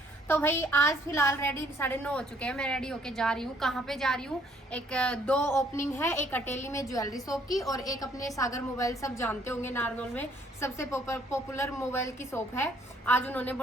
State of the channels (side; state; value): both; normal; correlation 0.64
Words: तो भाई आज फिलहाल रेडी 9:30 हो चुके हैं। मैं रेडी होके जा रही हूँ। कहाँ पे जा रही हूँ? एक दो ओपनिंग है, एक अटेली में ज्वेलरी शॉप की और एक अपने सागर मोबाइल, सब जानते होंगे नारनौल में सबसे पॉपुलर मोबाइल की शॉप है। आज उन्होंने